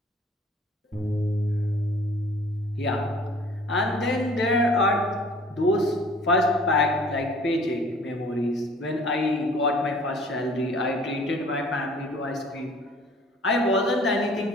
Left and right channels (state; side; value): normal; both; correlation 0.51